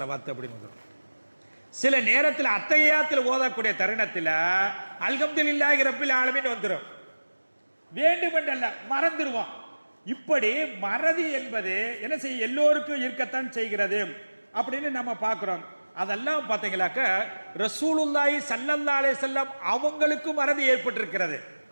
அப்படின்னு வந்துடும். சில நேரத்தில் அத்தகையாத்தில் ஓதக்கூடிய தருணத்தில் அல்ஹம்துலில்லாஹி ரப்பில் ஆலமீன் வந்துடும். வேண்டுமென்றல்ல, மறந்துடுவோம். இப்படி மறதி என்பது என்ன செய்ய எல்லோருக்கும் இருக்கத்தான் செய்கிறது அப்படின்னு நம்ம பார்க்கிறோம். அதெல்லாம் பார்த்தீங்களாக்க ரசூலுல்லாஹி ஸல்லல்லாஹு அலைஹி வஸல்லம் அவங்களுக்கும் மறதி ஏற்பட்டிருக்கிறது.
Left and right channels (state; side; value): inverted; both; correlation -1.00